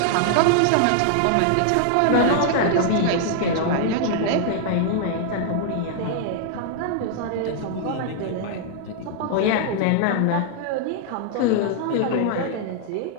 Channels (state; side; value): different; both; correlation -0.01